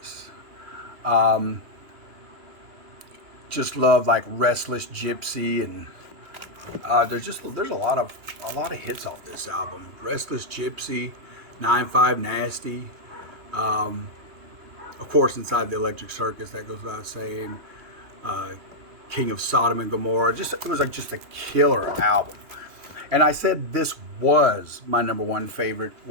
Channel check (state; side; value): late; left; 3.1 ms